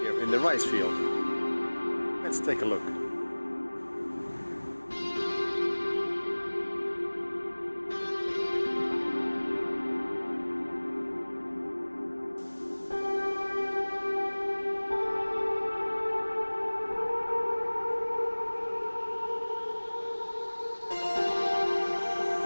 in the rice field. Let's take a look.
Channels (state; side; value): inverted; both; correlation -1.00